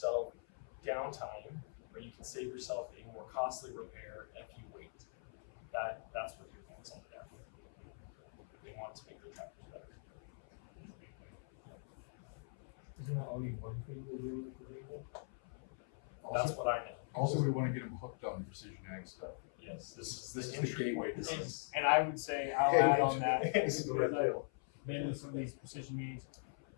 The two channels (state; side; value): silent; right; 50 dB below the other